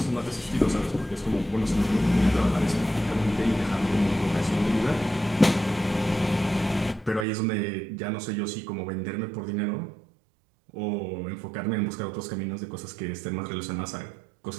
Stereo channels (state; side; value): drops out; left; at 7.2 s